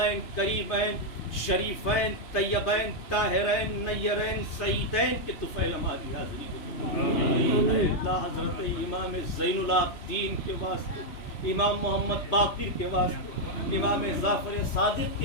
قریبین شریفین طیبین طاہرین نیرین سعیدین کے طفیل ہماری حاضری۔ اے اللہ حضرت امام زین العابدین کے واسطے، امام محمد باقر کے واسطے، امام جعفر صادق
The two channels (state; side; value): late; right; 3.1 ms